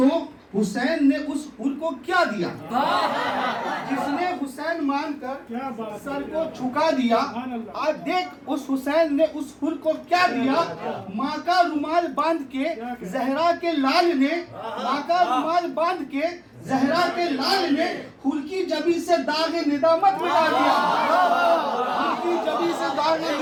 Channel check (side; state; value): both; identical; correlation 1.00